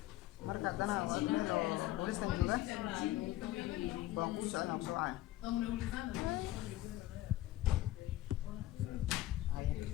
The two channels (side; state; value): right; quieter; 15.6 dB